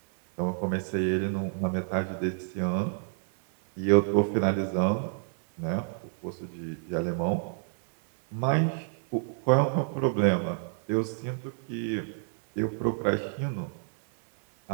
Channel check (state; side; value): silent; left; digital silence